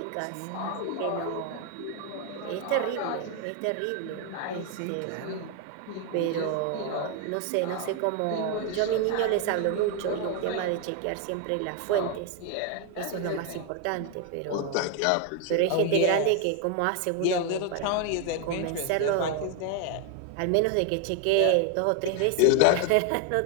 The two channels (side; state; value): both; different; correlation 0.01